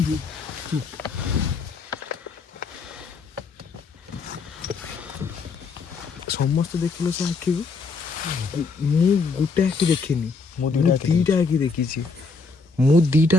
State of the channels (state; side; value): quieter; right; 4.4 dB